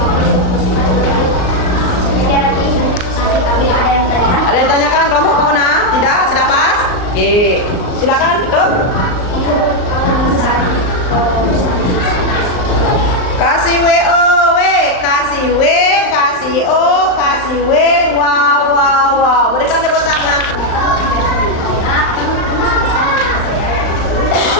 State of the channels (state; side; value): late; right; 39 ms